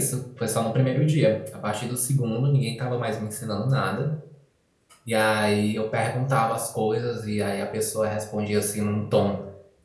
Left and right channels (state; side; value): identical; both; correlation 1.00